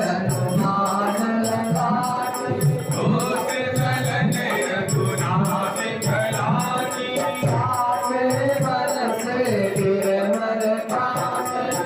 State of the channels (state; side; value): identical; both; correlation 1.00